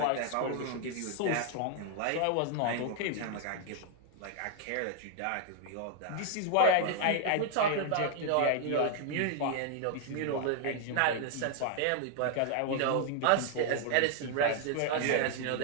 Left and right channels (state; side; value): different; both; correlation 0.00